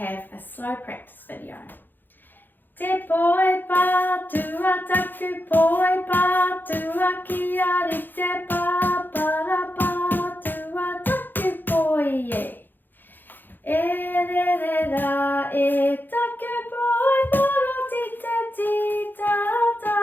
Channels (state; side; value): late; right; 0.091 ms